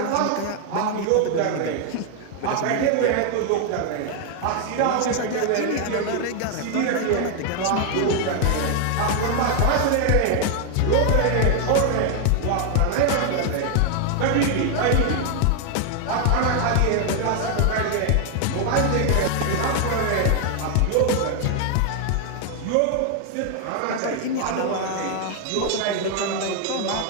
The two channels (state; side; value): different; both; correlation 0.00